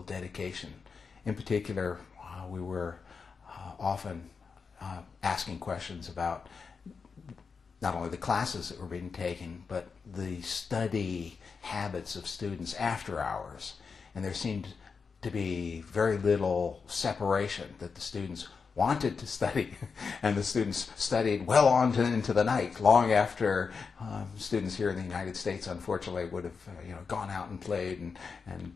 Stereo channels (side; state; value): right; quieter; 5.3 dB